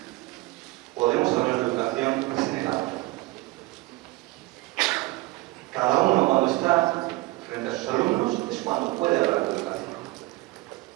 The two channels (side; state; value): left; quieter; 21.0 dB